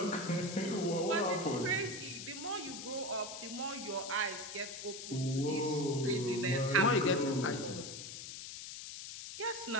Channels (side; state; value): left; noise; hiss, 9 dB below the sound